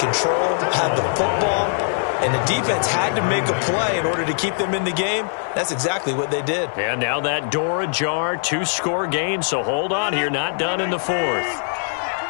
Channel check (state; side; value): silent; right; digital silence